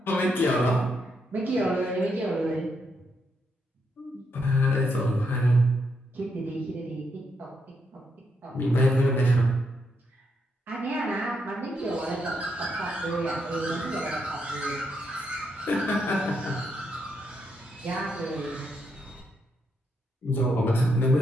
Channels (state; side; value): normal; both; correlation 0.79